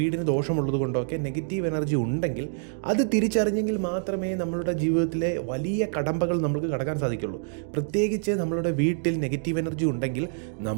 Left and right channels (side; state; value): left; silent; digital silence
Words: ദോഷമുള്ളത് കൊണ്ടോ ഒക്കെ നെഗറ്റീവ് എനർജി ഉണ്ടെങ്കിൽ അത് തിരിച്ചറിഞ്ഞെങ്കിൽ മാത്രമേ നമ്മളുടെ ജീവിതത്തിലെ വലിയ കടമ്പകൾ നമുക്ക് കടക്കാൻ സാധിക്കുള്ളൂ. പ്രത്യേകിച്ച് നമ്മളുടെ വീട്ടിൽ നെഗറ്റീവ് എനർജി ഉണ്ടെങ്കിൽ